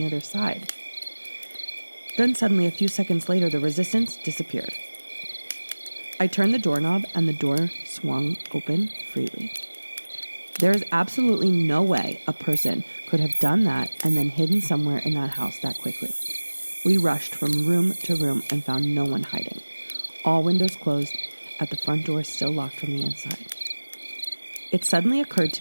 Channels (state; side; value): inverted; both; correlation -1.00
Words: other side. Then suddenly, a few seconds later, the resistance disappeared. I turned the doorknob and the door swung open freely. There is absolutely no way a person could have done that and then hidden somewhere in that house that quickly. We rushed from room to room and found no one hiding. All windows closed, at the front door still locked from the inside. It suddenly occurred